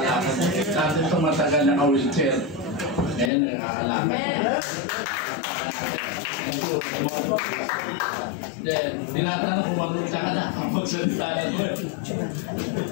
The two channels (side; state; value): right; drops out; at 3.3 s